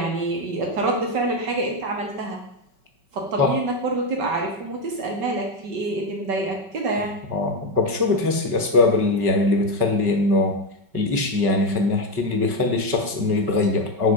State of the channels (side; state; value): left; late; 5.3 ms